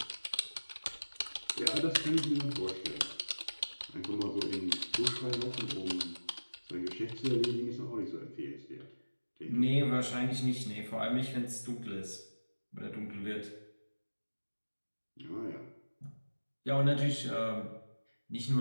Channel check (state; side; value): inverted; both; correlation -1.00